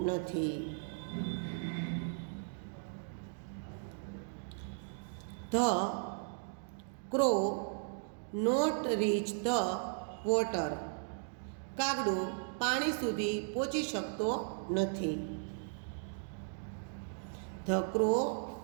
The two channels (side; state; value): left; silent; digital silence